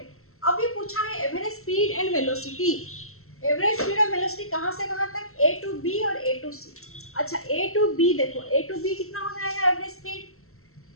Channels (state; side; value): late; right; 0.63 ms